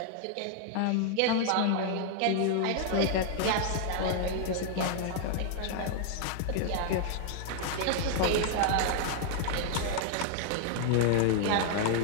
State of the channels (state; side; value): different; both; correlation 0.00